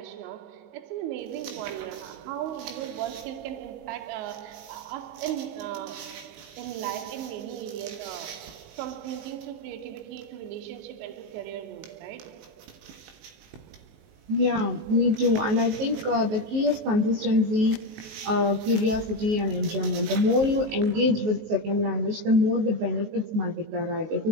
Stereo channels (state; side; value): late; left; 19 ms